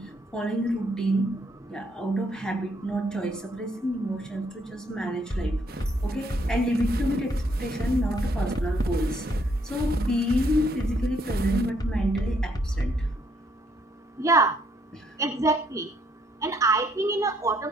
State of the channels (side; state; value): both; normal; correlation 0.70